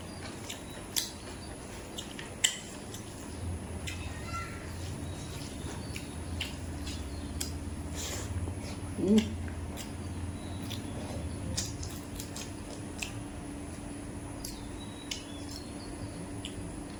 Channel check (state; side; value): identical; both; correlation 1.00